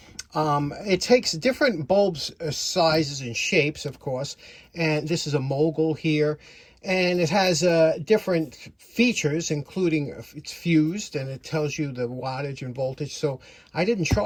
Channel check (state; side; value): identical; both; correlation 1.00